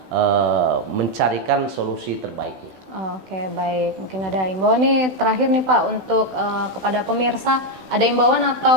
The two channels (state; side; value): late; left; 16 ms